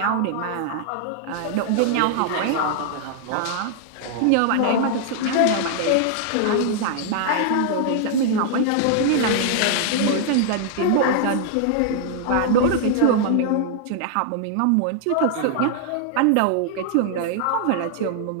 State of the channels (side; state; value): both; different; correlation -0.01